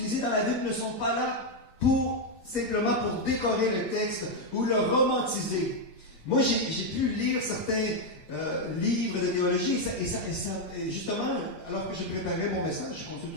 dans la Bible ne sont pas là simplement pour décorer le texte ou le romantiser. Moi, j'ai pu lire certains livres de théologie, et justement, alors que je préparais mon message, je consulte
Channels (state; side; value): late; right; 8.5 ms